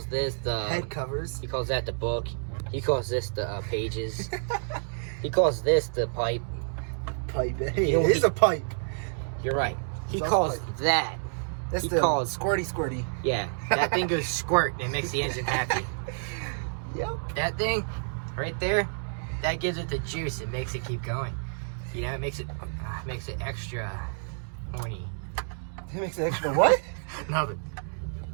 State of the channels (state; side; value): silent; left; digital silence